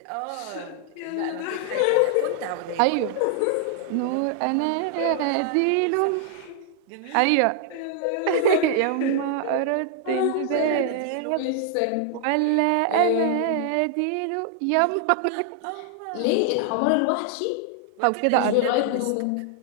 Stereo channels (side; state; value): both; different; correlation 0.00